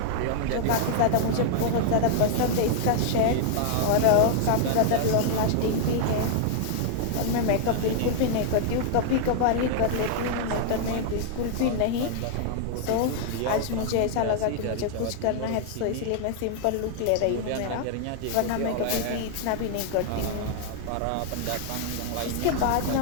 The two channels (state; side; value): different; both; correlation -0.01